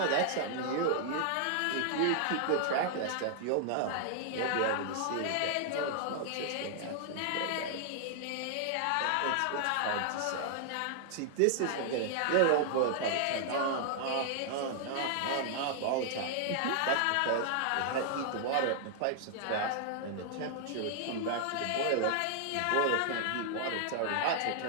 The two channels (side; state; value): both; different; correlation 0.00